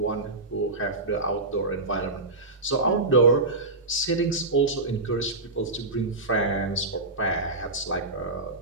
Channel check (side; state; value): left; quieter; 3.0 dB